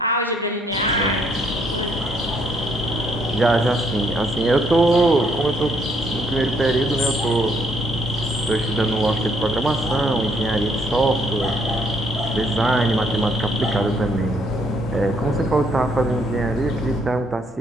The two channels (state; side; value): normal; both; correlation 0.69